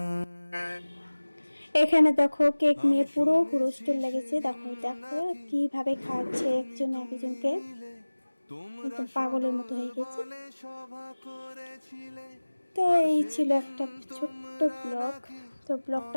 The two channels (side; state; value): both; inverted; correlation -1.00